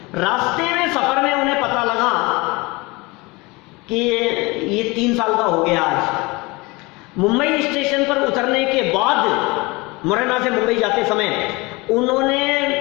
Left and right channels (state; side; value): quieter; right; 24.4 dB